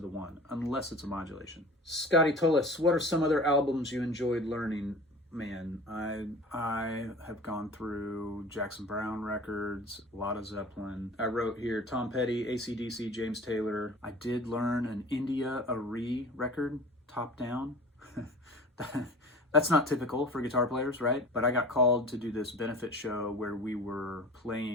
1, unless it's a modulation. Scotty Tullis, what are some other albums you enjoyed learning? Man, I have gone through Jackson Browne records, a lot of Zeppelin. I wrote here Tom Petty, AC/DC, James Taylor. I did learn an India Arie record, top down. That's not typical for guitar players, right? But I got called to do this benefit show where we were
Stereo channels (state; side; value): normal; both; correlation 0.40